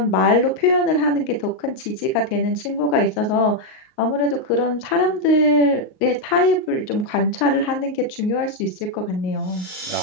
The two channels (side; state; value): right; late; 38 ms